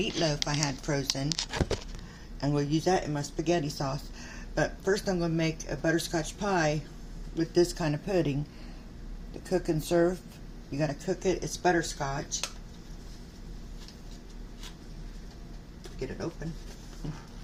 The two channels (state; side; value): identical; both; correlation 1.00